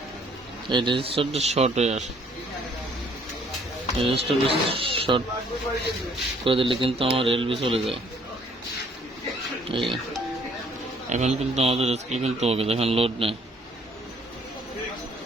এই রেজিস্টারটা শর্ট হয়ে আসে। রেজিস্টারটা শর্ট করে দিলে কিন্তু আমার এলবি চলে যায়। এই এখন কিন্তু আমাদের স্কেল কিন্তু ওকে, দেখেন লোড নেই।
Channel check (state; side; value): normal; both; correlation 0.61